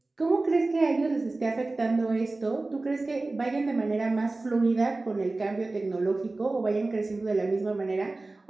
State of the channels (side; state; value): left; quieter; 3.2 dB